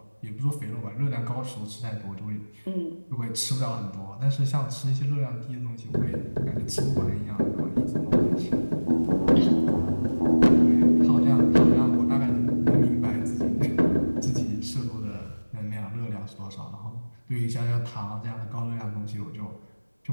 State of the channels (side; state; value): both; inverted; correlation -1.00